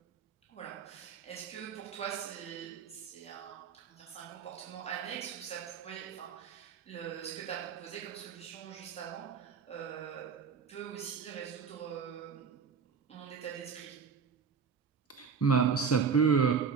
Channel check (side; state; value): left; quieter; 6.1 dB